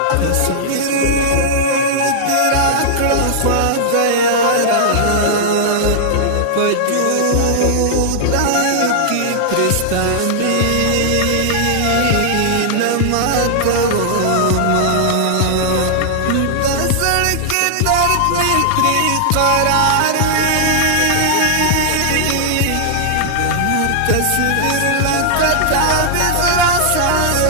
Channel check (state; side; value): different; both; correlation -0.01